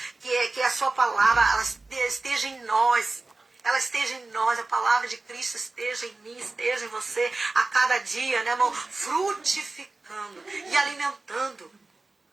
que a sua palavra ela esteja em nós. Ela esteja em nós, a palavra de Cristo esteja em mim, esteja em você, a cada dia, né, irmão? Frutificando e alimentando.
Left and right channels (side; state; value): left; quieter; 3.4 dB